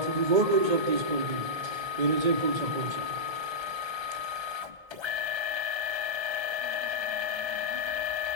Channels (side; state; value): left; late; 1.3 ms